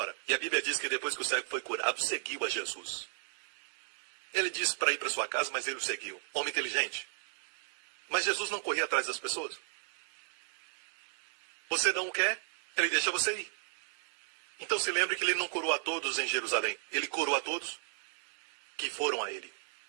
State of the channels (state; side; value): silent; left; 55 dB below the other